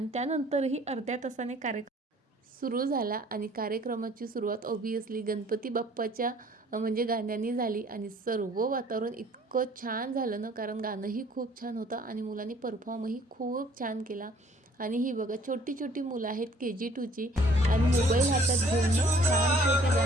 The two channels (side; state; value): both; normal; correlation 0.56